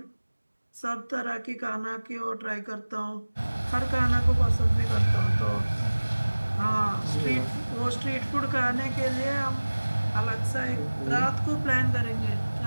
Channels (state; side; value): inverted; both; correlation -1.00